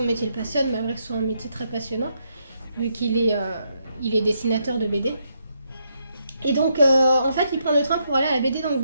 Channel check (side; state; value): both; inverted; correlation -0.78